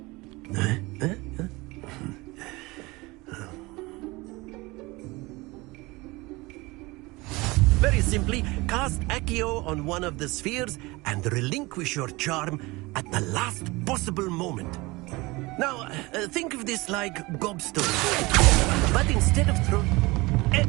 Very simply, cast Accio on one of the spheres and relinquish your charm at the last possible moment. Now, think of this like gobstone, but instead of throw...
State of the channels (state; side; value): quieter; left; 22.9 dB